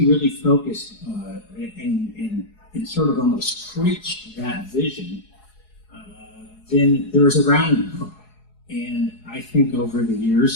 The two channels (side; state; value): right; late; 4.7 ms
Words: really focused and sort of almost preached that vision, then there was a rallying cry. And I think over the